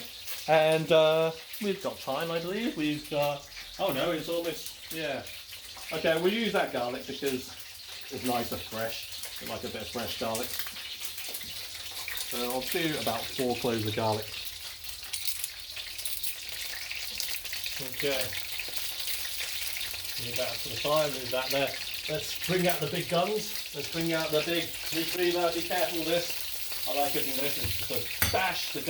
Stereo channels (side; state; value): both; identical; correlation 1.00